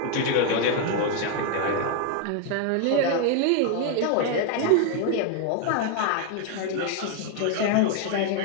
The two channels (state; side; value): different; both; correlation 0.01